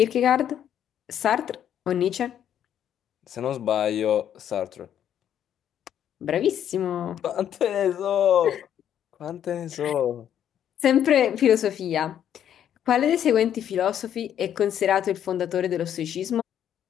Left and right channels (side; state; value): right; quieter; 9.9 dB